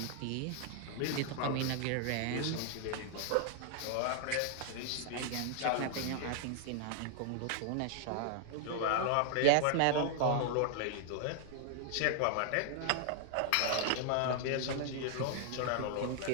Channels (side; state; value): both; different; correlation 0.00